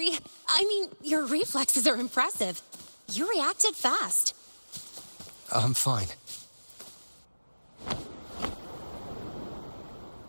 I mean, your reflexes are impressive. You reacted fast. I'm fine.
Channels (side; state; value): both; inverted; correlation -1.00